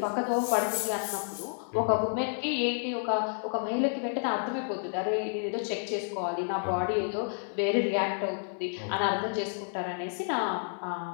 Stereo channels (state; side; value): silent; right; 58 dB below the other